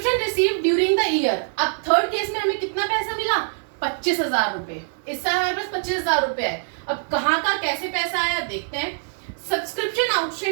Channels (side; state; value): left; silent; 62 dB below the other